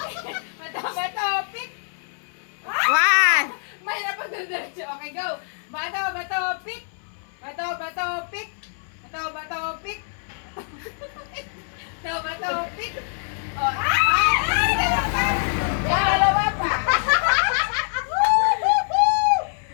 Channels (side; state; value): right; silent; 62 dB below the other